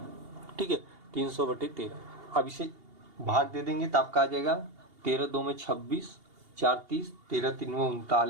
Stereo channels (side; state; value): left; late; 2.8 ms